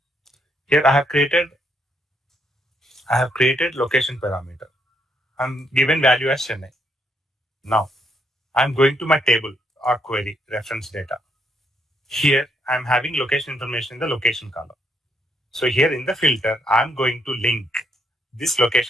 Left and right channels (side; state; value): both; normal; correlation 0.74